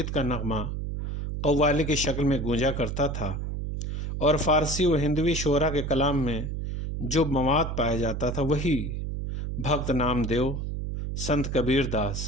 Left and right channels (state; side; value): noise; right; hum, 4 dB below the sound